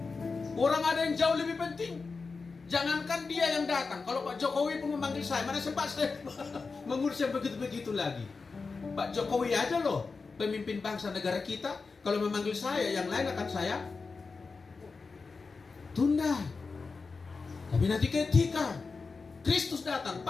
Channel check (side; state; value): right; quieter; 4.4 dB